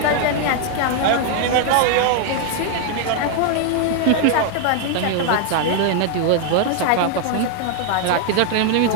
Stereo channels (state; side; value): different; both; correlation 0.00